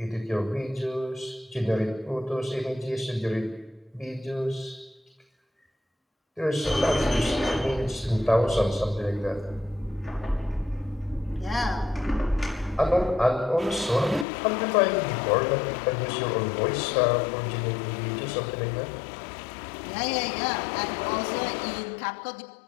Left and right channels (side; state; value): right; drops out; at 14.2 s